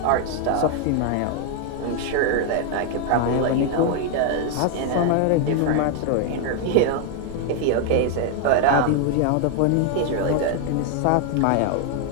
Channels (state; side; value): different; both; correlation 0.00